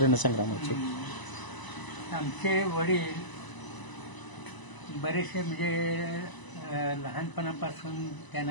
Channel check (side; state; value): right; late; 1.0 ms